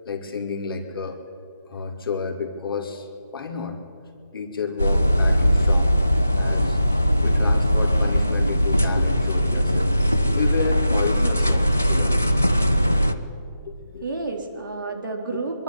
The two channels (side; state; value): both; inverted; correlation -0.89